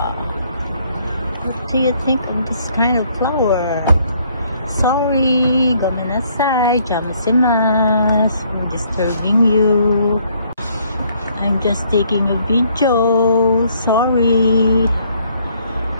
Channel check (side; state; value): both; inverted; correlation -0.66